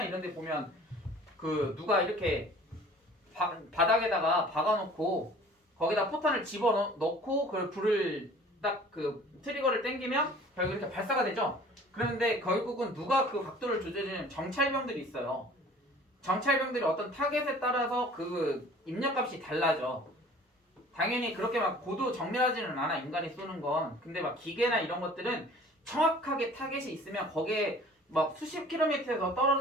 이런 데 보면 그 누가 이렇게 바닥에다가 박아놓고 거기다 포탄을 집어넣고 그 불을 딱 그 트리거를 당기면 결국 이렇게 발사가 되죠. 그런데 결국은 누가 그 각도를 조절해주는 정찰병들이 있어요. 정찰병들이 어떤 타겟에 따라서 그 입력값이 달라져. 당연히 그렇게 막 고도 정밀하지는 않아, 인간이 쏘는 건. 근데 막 기계나 이런 것들은 정확하게 타겟이 있으면 거기에 막 수십 킬로미터에서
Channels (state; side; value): normal; both; correlation 0.48